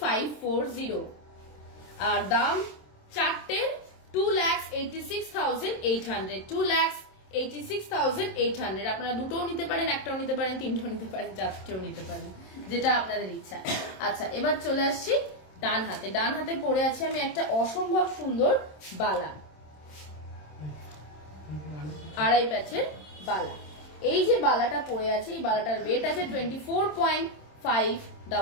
আর দাম 4টের 2,86,800, 2,86,800। আপনারা দুটোও নিতে পারেন, একটাও নিতে পারেন, তিনটাও নিতে পারেন, চারটেও নিতে পারেন, যেটা আপনাদের ইচ্ছা। আচ্ছা, এবার চলে আসছি ডান হাতে, ডান হাতে পরে আছে আমি একটা অসম্ভব সুন্দর বালা, আড়াই প্যাচের বালা। এই যে বালাটা পরে আছে, এই বালাটার ওয়েট আছে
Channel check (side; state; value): right; late; 27 ms